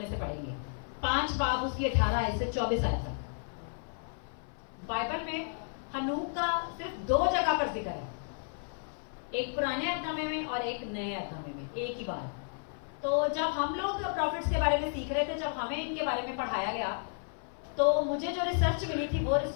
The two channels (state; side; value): silent; right; 56 dB below the other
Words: سے پڑھیں گے. 5 باب اس کی 18 آیت سے 24 آیت تک. بائبل میں ہنوک کا صرف 2 جگہ پر ذکر ہے، ایک پرانے عہد نامے میں اور ایک نئے عہد نامے میں، ایک ہی بار. تو جب ہم لوگ پروفٹس کے بارے میں سیکھ رہے تھے، جب ہمیں ان کے بارے میں پڑھایا گیا، تو مجھے جو ریسرچ ملی تھی وہ